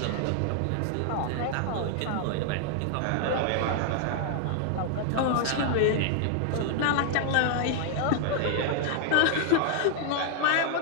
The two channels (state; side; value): different; both; correlation 0.00